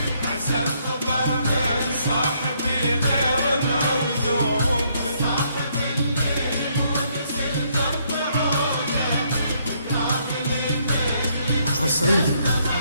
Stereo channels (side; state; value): both; inverted; correlation -0.70